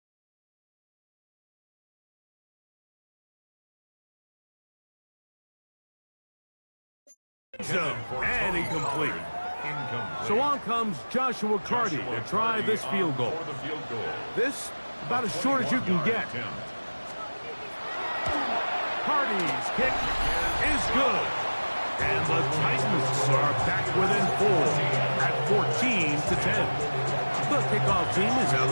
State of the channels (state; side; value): inverted; both; correlation -1.00